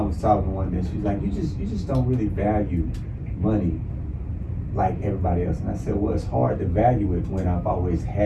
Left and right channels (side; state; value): both; identical; correlation 1.00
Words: was talking one day, she's like, you just don't really value money like everybody else. And I said, well, it's hard to value it when I've always